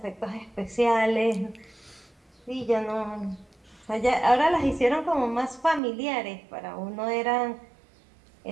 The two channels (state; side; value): drops out; left; at 5.8 s